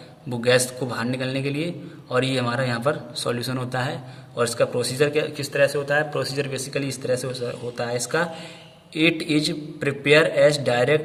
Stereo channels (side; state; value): both; identical; correlation 1.00